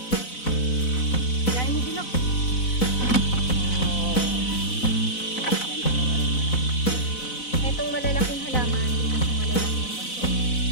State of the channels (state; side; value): late; right; 4.0 ms